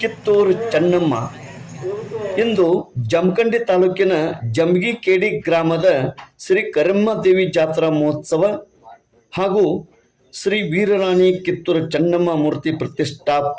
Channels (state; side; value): identical; both; correlation 1.00